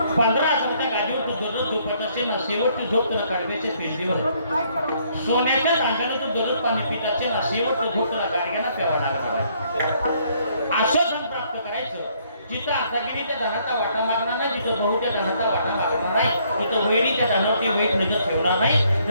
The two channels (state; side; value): inverted; both; correlation -0.67